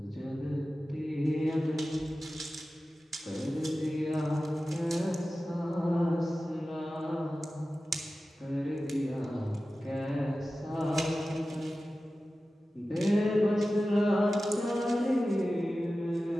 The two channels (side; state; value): both; normal; correlation 0.95